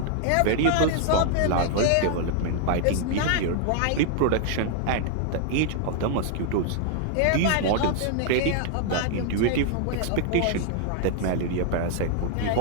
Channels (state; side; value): different; both; correlation 0.00